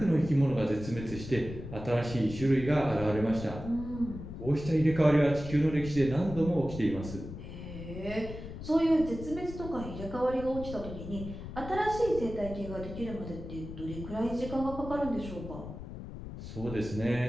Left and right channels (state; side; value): noise; left; rumble, 10 dB below the sound